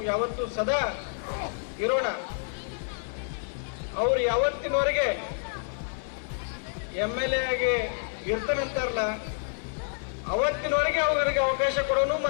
ಯಾವತ್ತೂ ಸದಾ ಇರೋಣ. ಅವ್ರು ಯಾವತ್ತಿನವರೆಗೆ MLA ಆಗಿ ಇರ್ತಾನಂತಾರಲ್ಲ, ಅವತ್ತಿನವರೆಗೆ ಅವ್ರಿಗೆ ಅವಕಾಶ ಕೊಡೋನು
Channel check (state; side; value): silent; right; digital silence